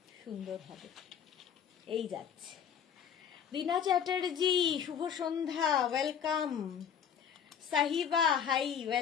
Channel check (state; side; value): quieter; right; 8.1 dB